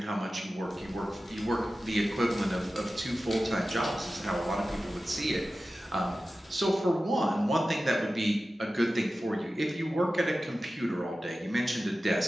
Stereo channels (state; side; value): normal; both; correlation 0.95